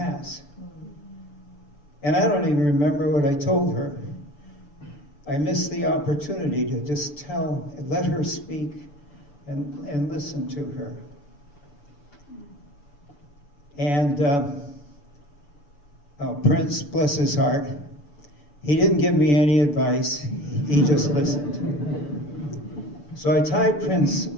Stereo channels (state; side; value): late; right; 6.9 ms